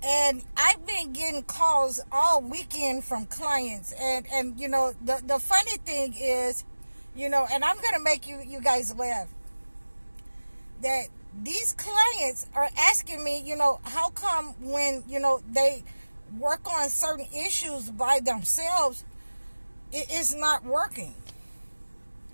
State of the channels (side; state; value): both; inverted; correlation -1.00